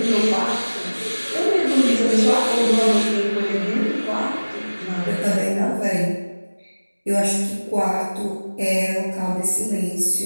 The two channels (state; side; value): inverted; both; correlation -1.00